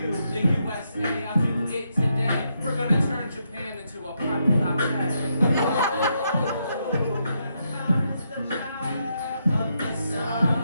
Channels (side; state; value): both; inverted; correlation -0.80